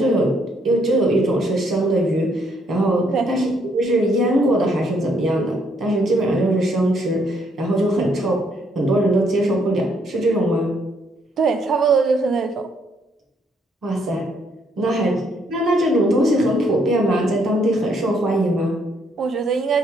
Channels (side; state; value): both; normal; correlation 0.70